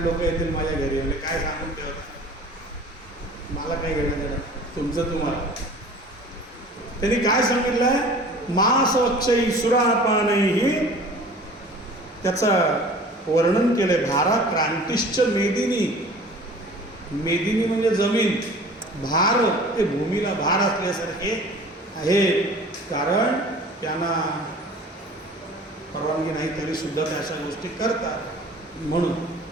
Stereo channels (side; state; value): both; normal; correlation 0.45